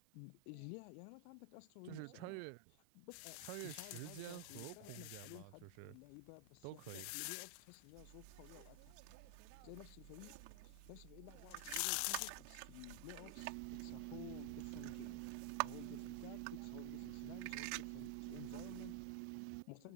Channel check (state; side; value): different; both; correlation 0.00